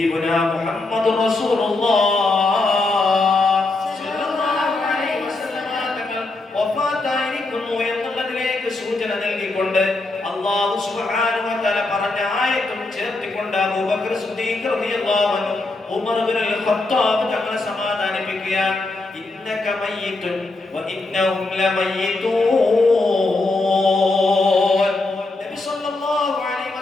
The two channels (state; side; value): quieter; right; 3.2 dB